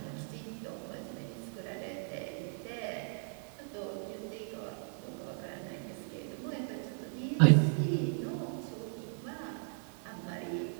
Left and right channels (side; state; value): left; silent; 53 dB below the other